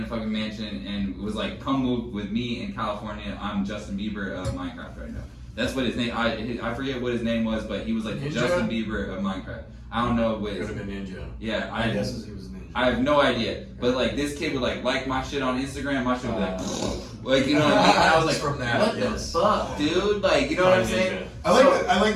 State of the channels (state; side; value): identical; both; correlation 1.00